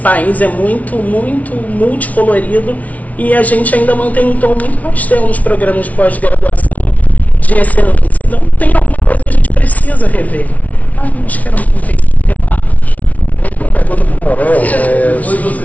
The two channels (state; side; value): late; right; 0.070 ms